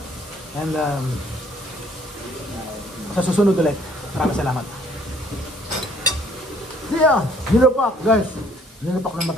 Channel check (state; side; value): normal; both; correlation 0.61